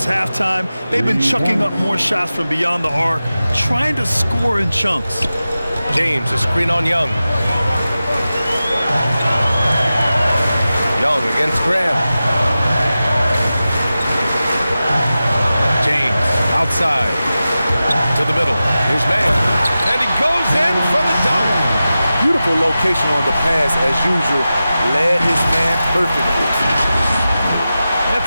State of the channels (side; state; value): both; inverted; correlation -0.94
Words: halftime, they've been chucking up more shots from beyond the arc, trying to score in chunks. James, a screen on Young. Young against Graham. James, outside, to the middle. Here's Mann, and he goes in for the dunk. Beautiful location on the pass, as usual. Led his man perfectly. If